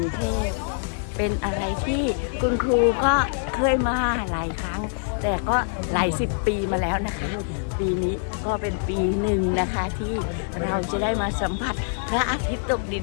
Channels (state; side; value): silent; right; digital silence